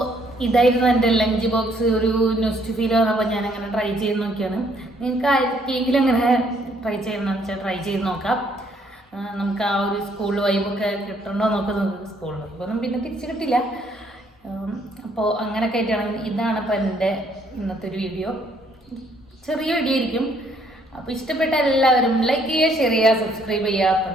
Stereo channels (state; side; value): normal; both; correlation 0.67